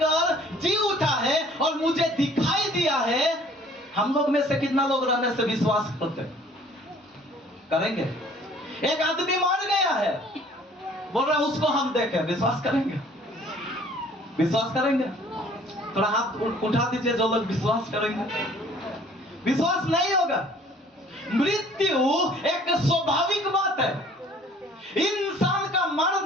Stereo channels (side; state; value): both; normal; correlation 0.54